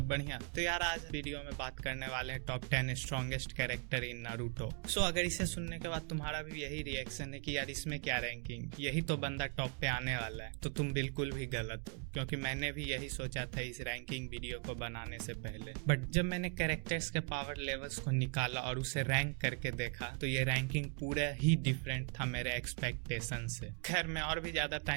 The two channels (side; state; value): left; quieter; 36.3 dB